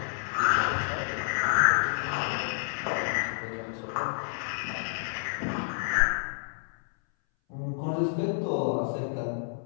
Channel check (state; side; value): silent; right; 58 dB below the other